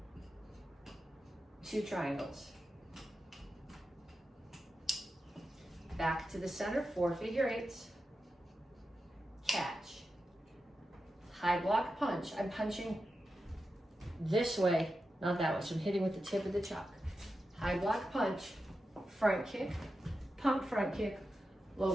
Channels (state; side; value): normal; both; correlation 0.90